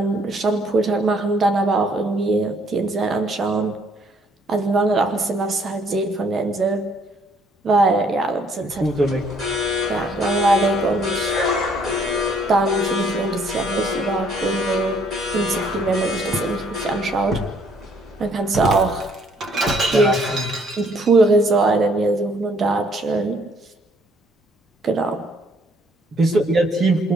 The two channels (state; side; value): normal; both; correlation 0.64